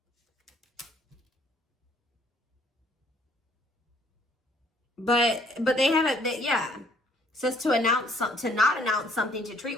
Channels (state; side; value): normal; both; correlation 0.63